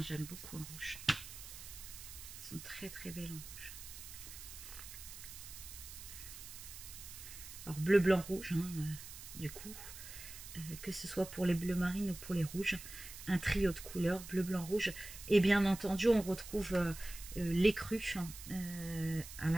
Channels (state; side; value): noise; right; hiss, 12 dB below the sound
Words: j'aime beaucoup en rouge. Elles sont très très belles en rouge. Alors bleu, blanc, rouge, du coup, que ce soit pour les bleus marines ou pour les rouges, un trio de couleurs, bleu, blanc, rouge. Et bien entendu, on retrouve l'écru à